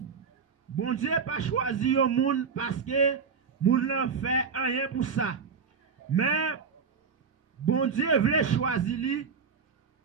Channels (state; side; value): quieter; left; 5.8 dB